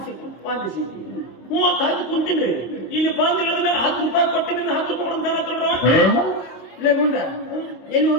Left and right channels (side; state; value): right; late; 25 ms